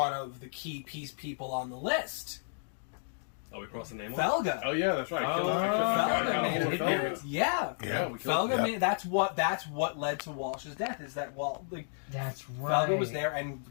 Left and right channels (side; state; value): right; silent; digital silence